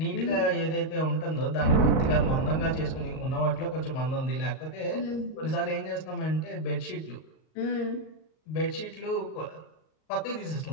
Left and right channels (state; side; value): late; right; 38 ms